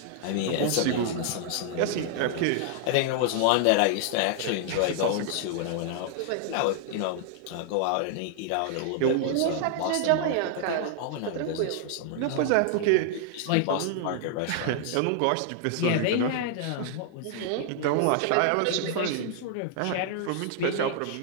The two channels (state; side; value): different; both; correlation -0.01